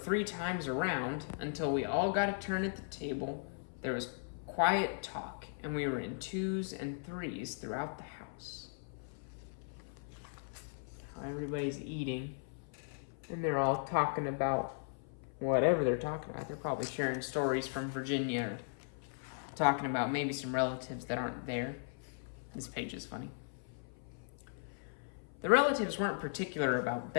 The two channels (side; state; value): right; silent; 53 dB below the other